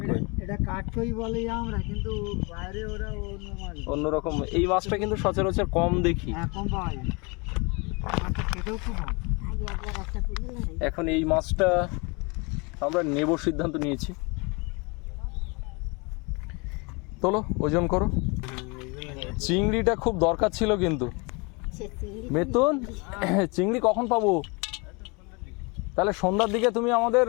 এটা কাঠকই বলে আমরা, কিন্তু বাইরে ওরা অন্যরকম। এই মাছটা কিন্তু সচরাচর কম দেখি, কম পাওয়া যায়। মাছটা খেতেও খুব ভালো। এখন এই মাছটা আমরা নেব সিদ্ধান্ত নিয়েছি। তোলো, ওজন করো। চিংড়িটা খুব দরকার ছিল কিন্তু। বেতন চিংড়ি কখন পাবো? তাহলে সন্ধ্যার দিকে তুমি আমাদের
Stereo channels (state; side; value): quieter; right; 29.6 dB